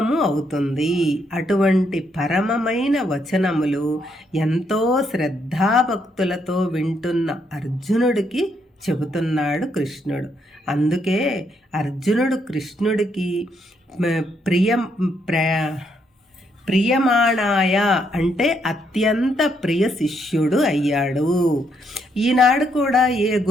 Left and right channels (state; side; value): normal; both; correlation 0.75